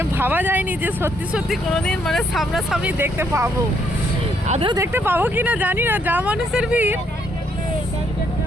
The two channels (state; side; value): normal; both; correlation 0.71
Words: ভাবা যায়নি যে সত্যি সত্যি কোনোদিন মানে সামনাসামনি দেখতে পাবো। আদৌ দেখতে পাবো কি না জানি না, যা মানুষের ভিড়।